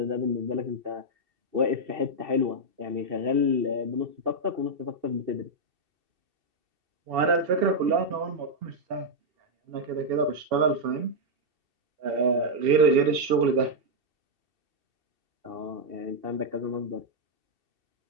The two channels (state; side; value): late; left; 2.7 ms